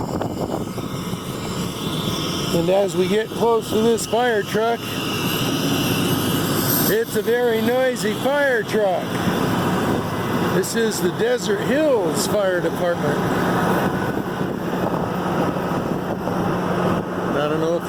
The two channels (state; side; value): identical; both; correlation 1.00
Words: And as we get close to this fire truck, it's a very noisy fire truck. This is the Desert Hills Fire Department. I don't know